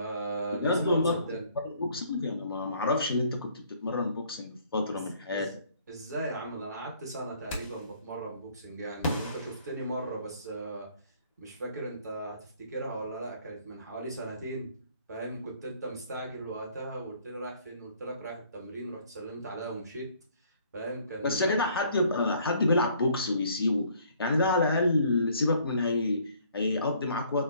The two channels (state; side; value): inverted; both; correlation -0.61